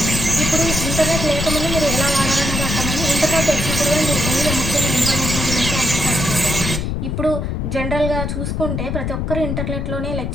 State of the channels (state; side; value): noise; left; rumble, 2 dB below the sound